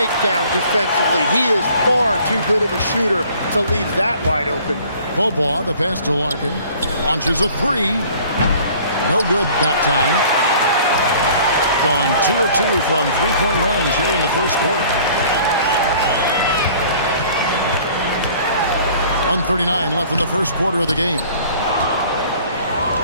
defensively. He is far too good of a shooter to leave that wide open. Beaubois, the pass to Larkin. Launches a 3. No good that time. Gone 2 of 2 from three-point range here in the first quarter. 1:39 left in the first quarter of the game.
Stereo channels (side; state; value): both; inverted; correlation -0.51